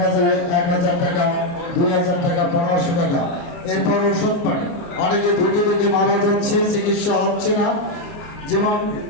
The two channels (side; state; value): right; late; 29 ms